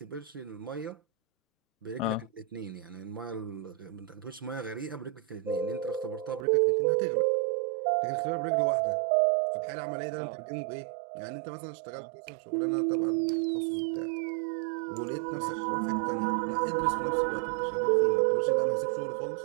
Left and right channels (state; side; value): drops out; left; at 6.5 s